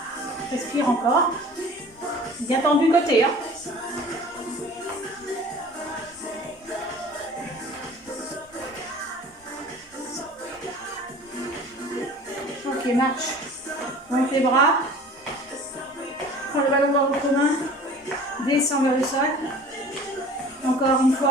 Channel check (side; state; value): both; normal; correlation 0.44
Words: Respire encore. Bien tendu côté. Hein. Ok, marche. Monte les bras. Prends le ballon dans votre main. Descends vers le sol. Encore une